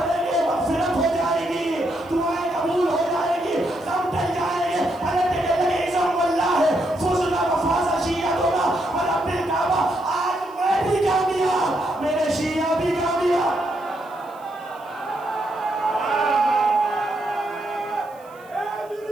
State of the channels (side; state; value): right; noise; hiss, 29 dB below the sound